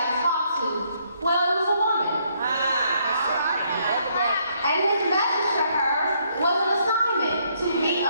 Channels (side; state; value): both; inverted; correlation -0.70